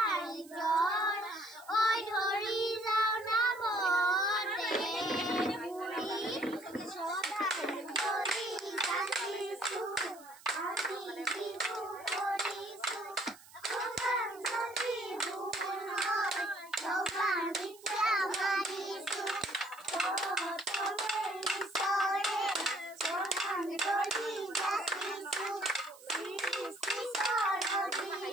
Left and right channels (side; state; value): right; noise; hiss, 22 dB below the sound